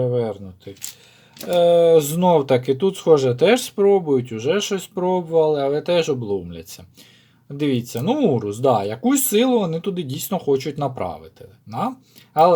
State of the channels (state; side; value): identical; both; correlation 1.00